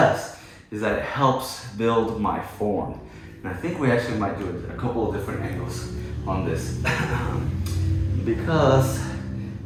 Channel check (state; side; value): identical; both; correlation 1.00